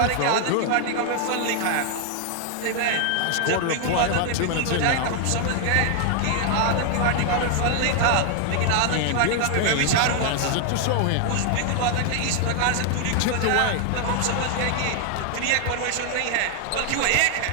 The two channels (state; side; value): different; both; correlation 0.00